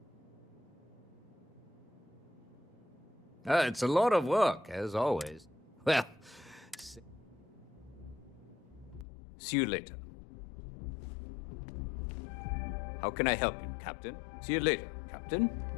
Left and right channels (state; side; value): drops out; right; at 9.1 s